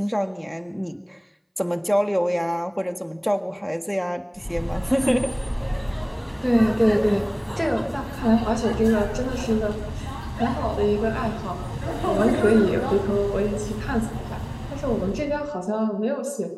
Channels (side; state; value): both; identical; correlation 1.00